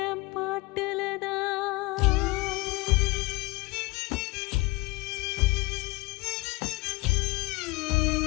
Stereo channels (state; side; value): quieter; right; 23.2 dB